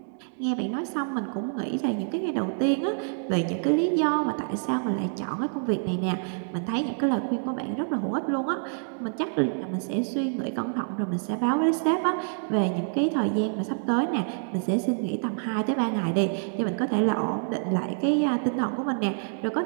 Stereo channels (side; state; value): left; silent; digital silence